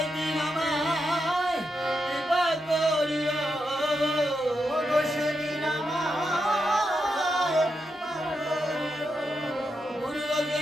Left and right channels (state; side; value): normal; both; correlation 0.85